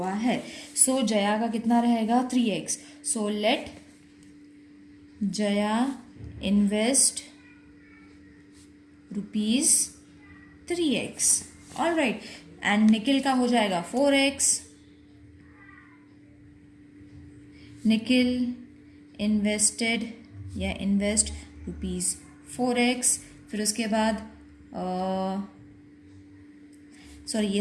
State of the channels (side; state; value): both; identical; correlation 1.00